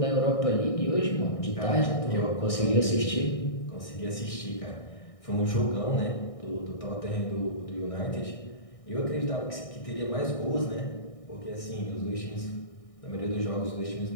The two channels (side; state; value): right; late; 1.6 ms